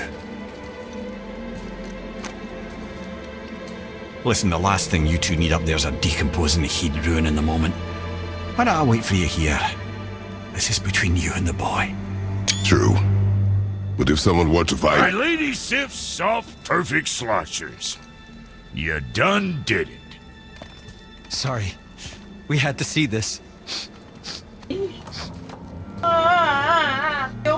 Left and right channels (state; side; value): identical; both; correlation 1.00